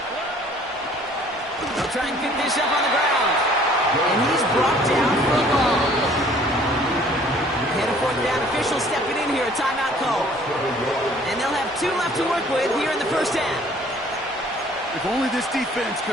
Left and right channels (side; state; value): both; normal; correlation 0.55